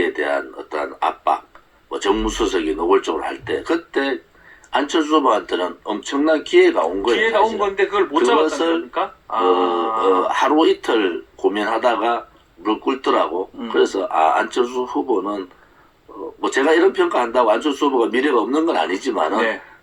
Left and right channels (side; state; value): both; identical; correlation 1.00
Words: 대한 어떤 압박, 뭐 정무수석이 노골적으로 할 때 그때 안철수 후보한테는 엄청난 기회가 온 거예요. 기회가 온 건데 그걸 못 잡았다는 겁니까? 하루 이틀 고민하다가 무릎 꿇더라고. 그래서 안철수 후보는 뭐 제가 이런 평가한다고 안철수 후보가 미래가 없는 건 아니지만은 네.